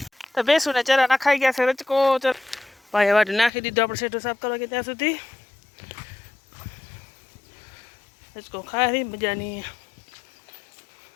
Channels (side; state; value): right; drops out; at 3.5 s